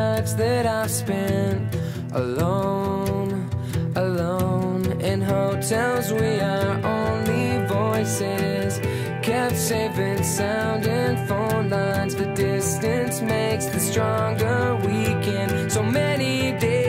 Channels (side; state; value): both; identical; correlation 1.00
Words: that I've spent alone, alone. In hotels we are only voices, kept safe and sound in phone lines. The distance makes the stronger weekend. So many